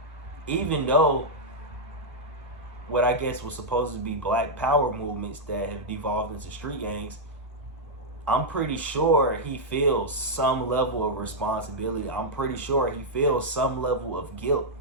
Even though what I guess was supposed to be black power movements that have devolved into street gangs, I'm pretty sure he feels some level of responsibility. I'm pretty sure he feels some level of guilt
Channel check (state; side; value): normal; both; correlation -0.06